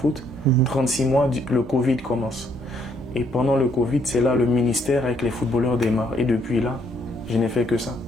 36 mois, le Covid commence. Et pendant le Covid, c'est là le ministère avec les footballeurs démarre. Et depuis là, je n'ai fait que ça.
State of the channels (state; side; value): normal; both; correlation 0.69